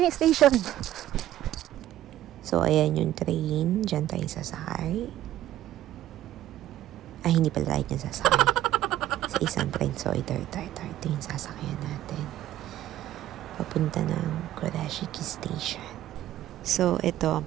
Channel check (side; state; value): left; quieter; 13.4 dB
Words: yung station. So, ayan yung train. Diyan tayo sasakay. Ay, hindi pala tayo dyan sasakay. Sa isang train. So, ito yung sasakyan natin. Papunta ng Kurashiki Station. So, ito